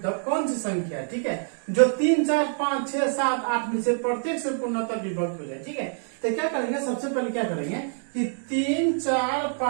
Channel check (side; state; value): left; silent; 61 dB below the other